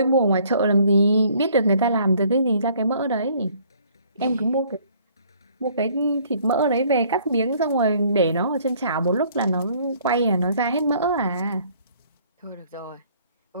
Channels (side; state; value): both; inverted; correlation -0.60